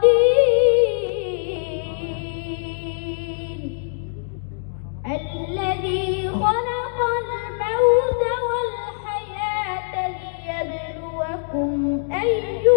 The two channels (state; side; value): silent; right; digital silence